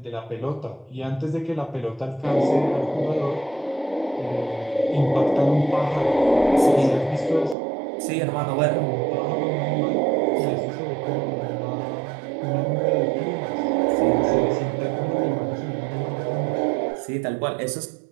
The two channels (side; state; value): left; drops out; at 7.6 s